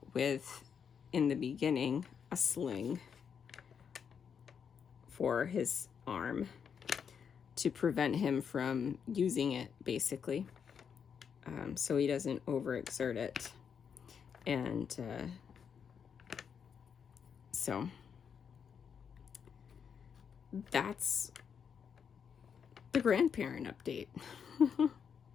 with in the beginning, a sling for his arm to prevent him from using it, basically, so he doesn't overexert it. And so that's the grandparent update.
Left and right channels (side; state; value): right; quieter; 7.1 dB